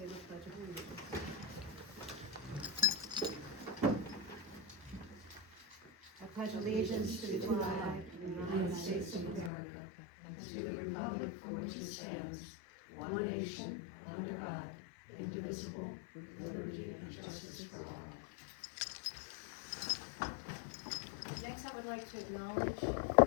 Pledge of Allegiance. I pledge allegiance to the flag of the United States of America and to the republic for which it stands, one nation, under God, indivisible, with liberty and justice for all. Next, I would like to acknowledge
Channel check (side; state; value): right; drops out; at 9.5 s